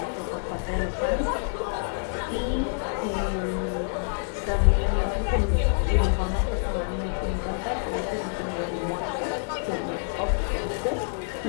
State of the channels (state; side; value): silent; right; digital silence